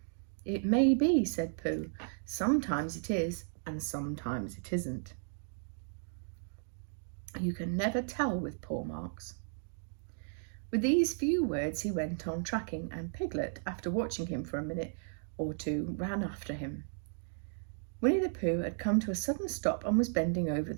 It may be, said Pooh. Sometimes it is, and sometimes it isn't. You can never tell with paw marks. With these few words he went on tracking, and Piglet, after watching him for a minute or two, ran after him. Winnie the Pooh had come to a sudden stop and was bending over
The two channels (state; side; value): silent; left; digital silence